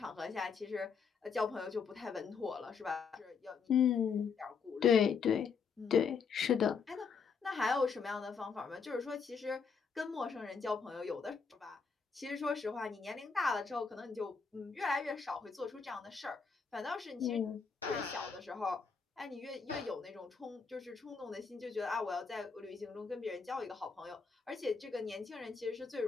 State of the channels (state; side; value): quieter; right; 5.6 dB